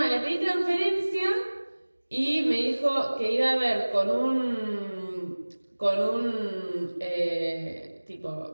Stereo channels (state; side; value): inverted; both; correlation -1.00